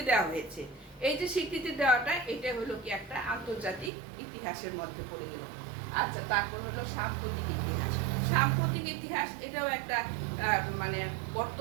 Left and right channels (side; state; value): left; drops out; at 3.9 s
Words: দেওয়া হয়েছে। এই যে স্বীকৃতি দেওয়াটা, এটা হলো কি একটা আন্তর্জাতিক ইতিহাসের মধ্যে পড়ে গেল। আচ্ছা, তারপর হলো সাম্প্রতিক ইতিহাস। সাম্প্রতিক ইতিহাস এটাও একটা মানে